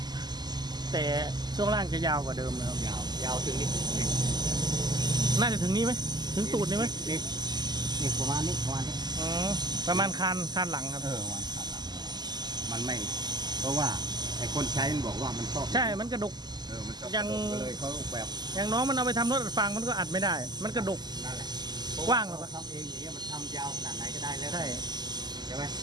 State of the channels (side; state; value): left; late; 0.20 ms